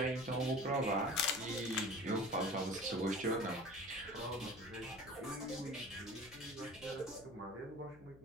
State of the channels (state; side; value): noise; left; hum, 21 dB below the sound